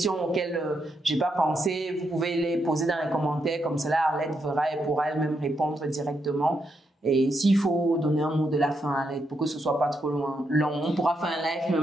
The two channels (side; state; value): both; normal; correlation 0.81